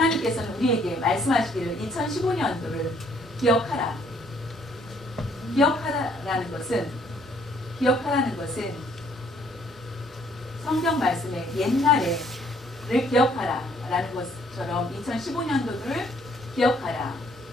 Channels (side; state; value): both; normal; correlation 0.64